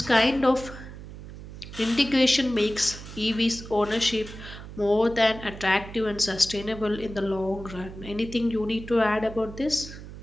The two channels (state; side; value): noise; right; hum, 13 dB below the sound